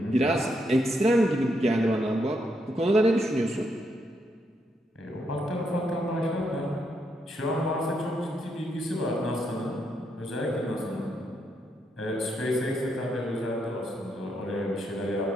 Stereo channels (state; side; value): normal; both; correlation 0.79